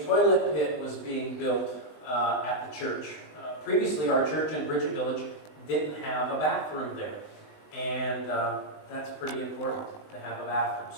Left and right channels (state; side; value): late; right; 20 ms